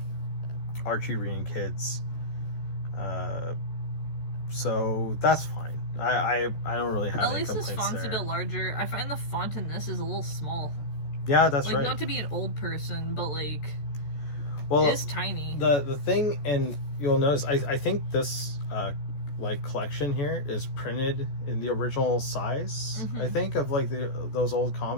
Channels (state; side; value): late; right; 14 ms